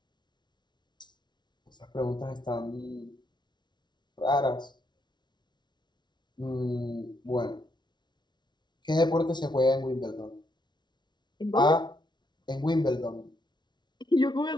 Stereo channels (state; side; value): late; right; 0.21 ms